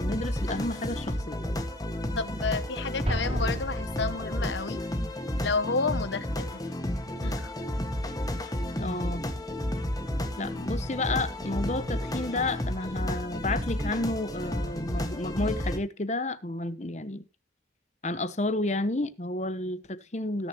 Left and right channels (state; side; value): normal; both; correlation 0.49